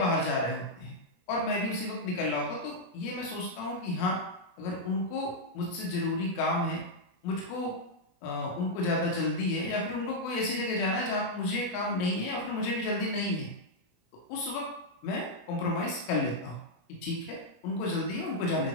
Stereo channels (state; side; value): late; right; 17 ms